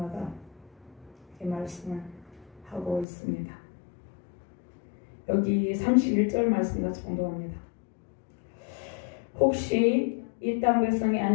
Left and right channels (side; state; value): right; drops out; at 3.1 s